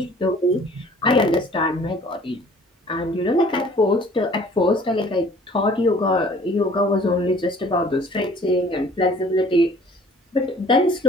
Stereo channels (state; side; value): normal; both; correlation 0.52